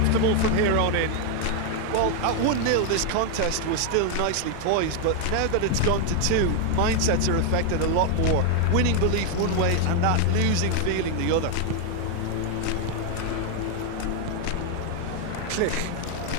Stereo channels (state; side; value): different; both; correlation 0.00